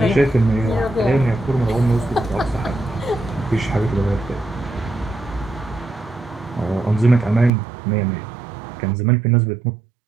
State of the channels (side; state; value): left; drops out; at 7.5 s